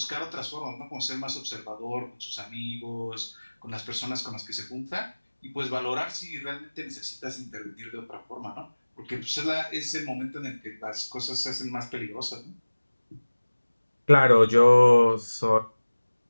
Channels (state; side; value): inverted; both; correlation -1.00